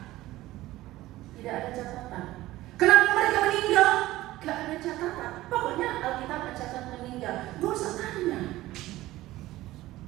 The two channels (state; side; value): quieter; left; 16.8 dB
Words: Tidak ada catatan. Kenapa mereka meninggal? Gak ada catatan. Pokoknya Alkitab mencatat meninggal. Gak usah tanya.